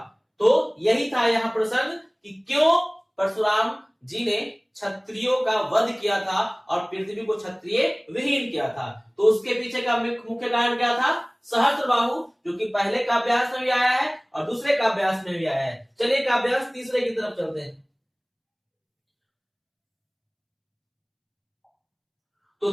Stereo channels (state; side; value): identical; both; correlation 1.00